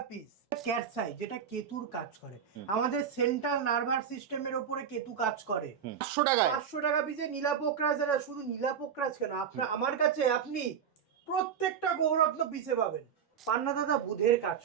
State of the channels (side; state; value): left; quieter; 7.7 dB